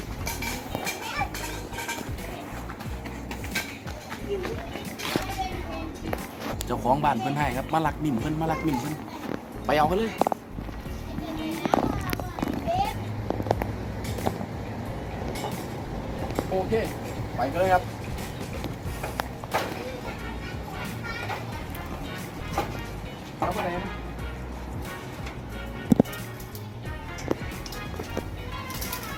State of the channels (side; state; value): both; identical; correlation 1.00